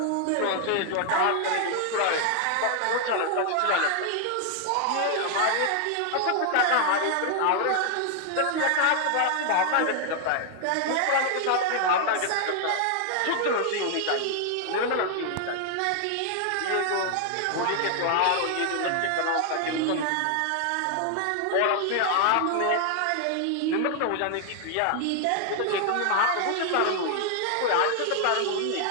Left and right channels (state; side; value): different; both; correlation 0.00